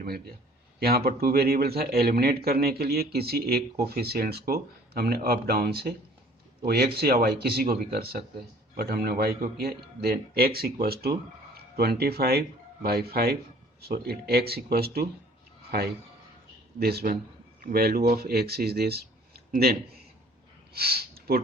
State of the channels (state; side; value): normal; both; correlation 0.53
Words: मिल गया, यहाँ पर टू वेरिएबल था, एलिमिनेट करने के लिए किसी एक कोफिशिएंट्स को हमने अप डाउन से, वो x या y किसी को भी कर सकते हैं, बट हमने y को किया। Then x equals to 25 by 5, so it x equals to 5, this one value of x is this, then